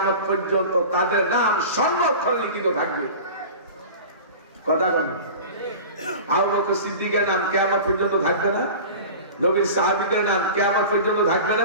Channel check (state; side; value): inverted; both; correlation -0.36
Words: পর্যন্ত তাদের নাম স্বর্ণাক্ষরে লিখিত থাকবে। কথা বলেন, আবু বকর সিদ্দিকের নাম কিয়ামত পর্যন্ত থাকবে না? নবীর সাহাবীদের নাম কিয়ামত পর্যন্ত থাকবে